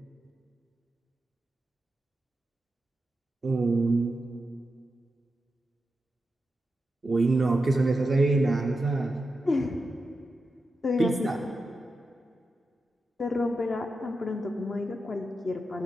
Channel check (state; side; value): normal; both; correlation 0.89